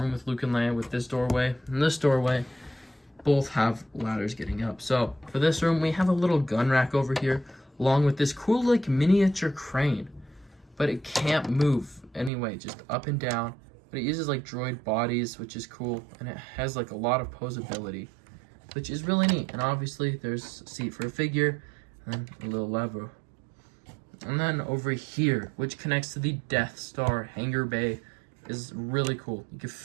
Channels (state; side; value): drops out; left; at 12.3 s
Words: with Luke and Leia with this doorway. And this doorway both have ladders getting up. So for this room, we have a little gun rack over here, along with this cool like miniature crane. But it can't move anyway, just up and down. But it uses like droid bodies, which is cool, and it has like a lot of posability, which is really neat. And obviously there's a seat for a figure, and a little lever. And then over here, which connects to the Death Star hangar bay, is really cool. You can